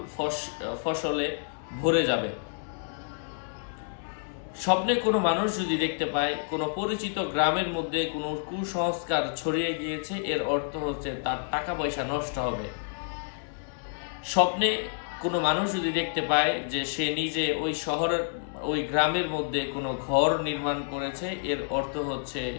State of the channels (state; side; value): silent; right; digital silence